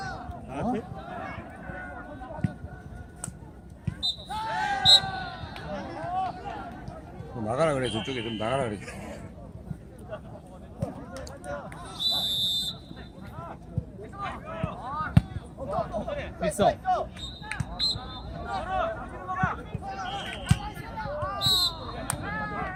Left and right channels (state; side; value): identical; both; correlation 1.00